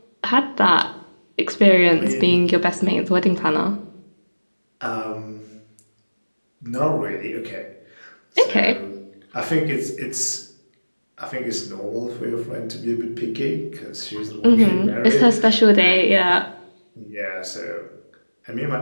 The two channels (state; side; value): inverted; both; correlation -1.00